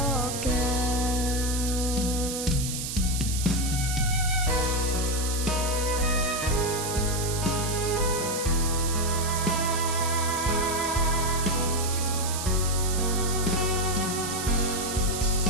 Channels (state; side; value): noise; right; hiss, 5 dB below the sound